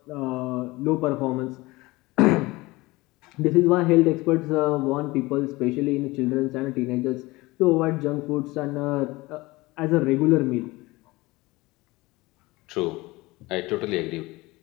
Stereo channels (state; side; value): quieter; right; 21.4 dB